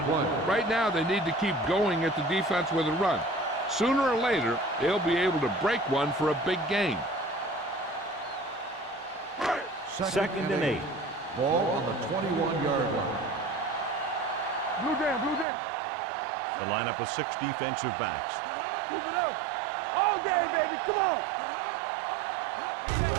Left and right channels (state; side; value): drops out; left; at 15.5 s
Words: Right now, they need to keep going at the defense with a run. Sooner or later, they'll be able to break one for a big gain. Second and 8. Ball on the 21-yard line. Blue jam, blue jam. The lineup of 6 defensive backs. Keep it up. All day, baby. Come on.